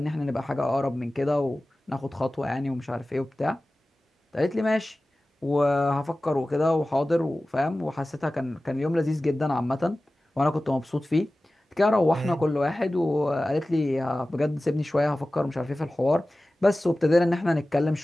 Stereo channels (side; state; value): both; normal; correlation 0.96